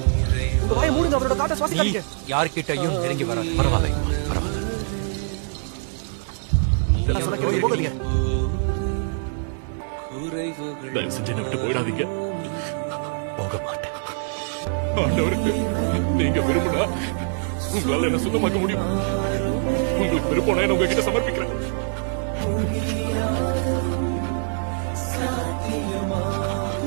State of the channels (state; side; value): silent; left; 57 dB below the other